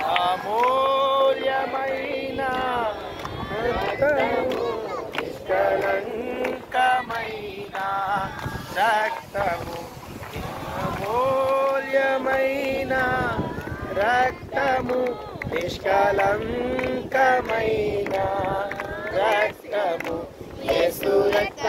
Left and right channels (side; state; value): both; identical; correlation 1.00